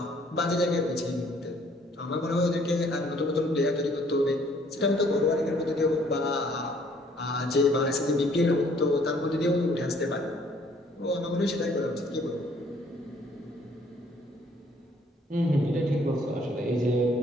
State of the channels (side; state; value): both; normal; correlation 0.61